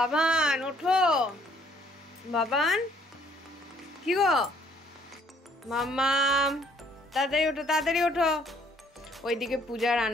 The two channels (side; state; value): both; normal; correlation 0.63